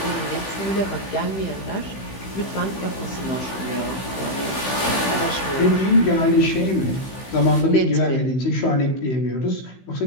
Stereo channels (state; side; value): late; right; 16 ms